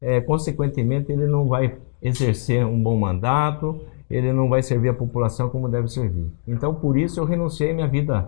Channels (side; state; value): right; silent; digital silence